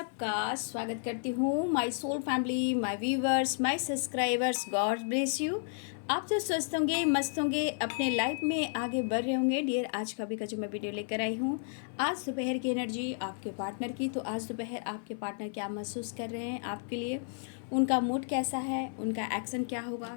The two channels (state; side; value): silent; right; 56 dB below the other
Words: स्वागत करती हूँ। My soul family, my viewers, my subscribers, God bless you. आप तो स्वस्थ होंगे, मस्त होंगे, अपने लाइफ में आगे बढ़ रहे होंगे। डियर, आज का भी का जो मैं वीडियो लेकर आई हूँ, आज दोपहर की एनर्जी आपके पार्टनर की। तो आज दोपहर आपके पार्टनर क्या महसूस कर रहे हैं आपके लिए, उनका मूड कैसा है, उनका एक्शन क्या